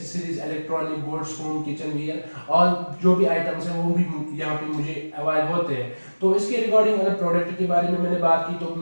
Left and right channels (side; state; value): both; inverted; correlation -1.00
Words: electronic goods, home kitchen wear और जो भी आइटम्स हैं वो भी यहाँ पे मुझे अवेलेबल होते हैं। तो इसके रिगार्डिंग अगर प्रोडक्ट के बारे में मैंने बात की तो